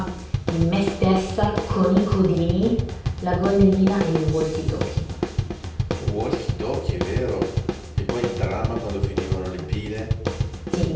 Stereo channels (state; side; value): identical; both; correlation 1.00